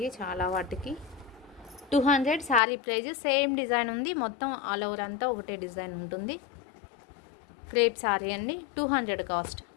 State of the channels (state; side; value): drops out; right; at 2.6 s